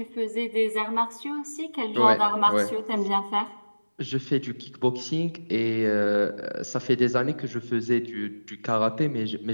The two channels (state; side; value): inverted; both; correlation -1.00